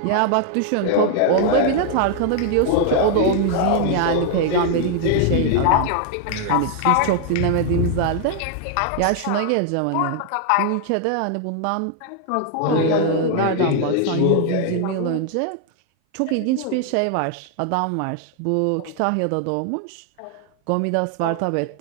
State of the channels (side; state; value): both; different; correlation 0.00